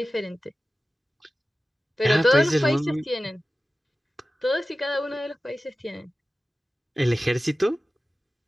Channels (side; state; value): both; normal; correlation 0.95